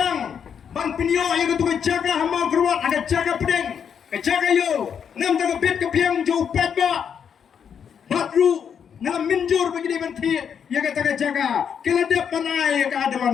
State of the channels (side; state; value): right; quieter; 7.6 dB